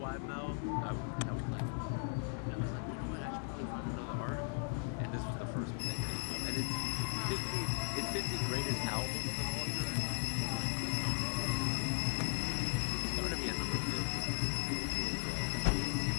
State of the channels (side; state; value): right; silent; 53 dB below the other